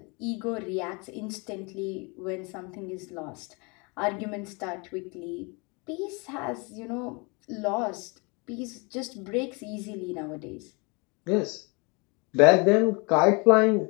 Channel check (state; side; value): quieter; right; 30.2 dB